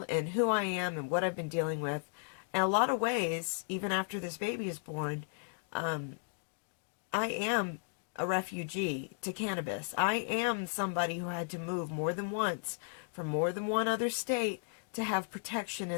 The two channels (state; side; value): silent; right; digital silence